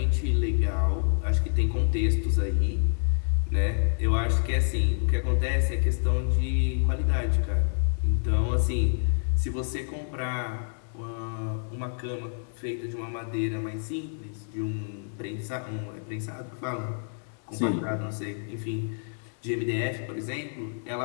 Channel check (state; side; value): silent; right; 58 dB below the other